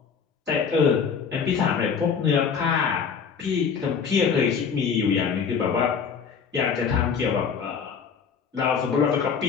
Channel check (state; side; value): quieter; right; 6.3 dB